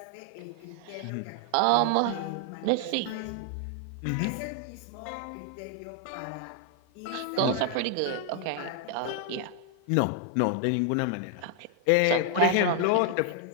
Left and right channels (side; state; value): both; different; correlation 0.00